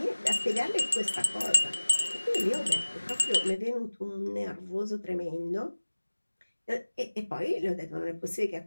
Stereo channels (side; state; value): both; inverted; correlation -1.00